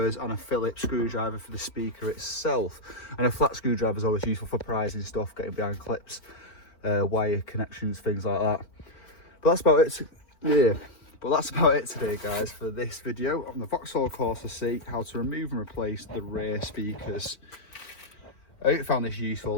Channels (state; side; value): late; right; 4.4 ms